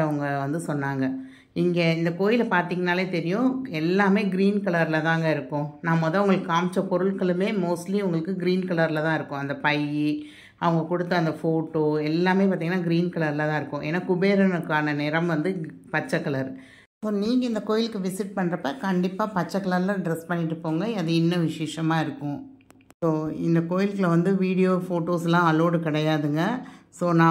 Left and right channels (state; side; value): identical; both; correlation 1.00